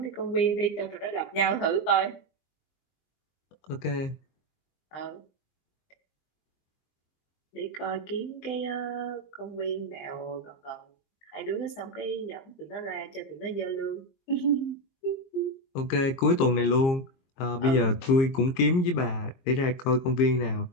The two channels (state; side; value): late; right; 22 ms